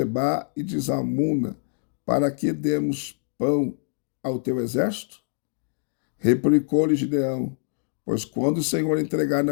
e de Zalmuna, para que demos pão ao teu exército? Replicou-lhe Gideão: pois quando o Senhor entregar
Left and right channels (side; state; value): right; silent; digital silence